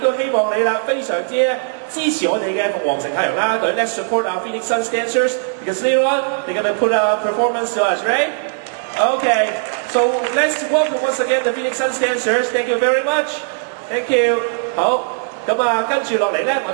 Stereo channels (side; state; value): left; silent; 59 dB below the other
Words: 希望你啦，非常之支持我哋嘅鳳凰城太陽啦隊。Let's support our Phoenix Suns dancers because later on they're gonna put a performance to us, right? Okay, so let's welcome once again the Phoenix Suns dancers. Thank you very much. Thank you. 好。跟住落嚟咧，我